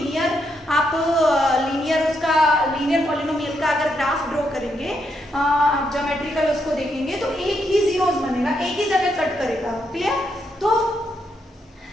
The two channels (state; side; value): normal; both; correlation 0.79